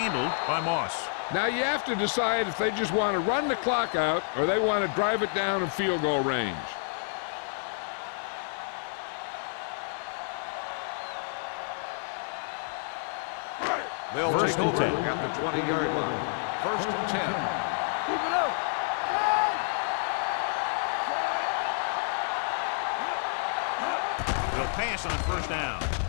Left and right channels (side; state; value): right; silent; digital silence